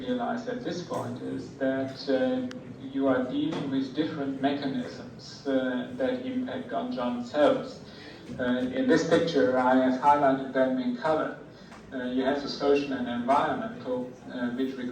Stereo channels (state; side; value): identical; both; correlation 1.00